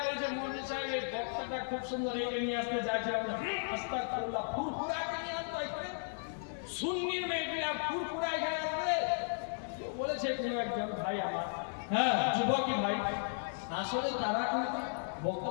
বলছে মৌলভী সাহেব এই বক্তাটা খুব সুন্দর, একে নিয়ে আসতে চাইছিলাম, আস্তাগফিরুল্লাহ, ফুরফুরাকে নিয়ে আসতে হয়, সুন্নির মেয়েগুলা ফুরফুরা এখানে আসবে। বলেছে কোনো একজন ভাই আমার, হ্যাঁ যুবকই ভাই, আসলে তারা কিন্তু বক্তা,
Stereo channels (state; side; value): silent; right; digital silence